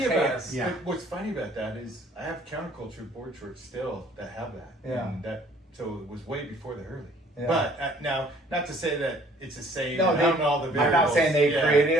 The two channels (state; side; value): normal; both; correlation 0.57